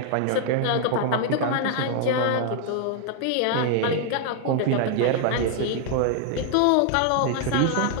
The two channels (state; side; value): different; both; correlation 0.00